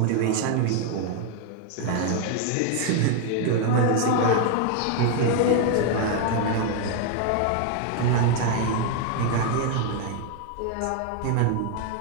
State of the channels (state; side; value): different; both; correlation 0.00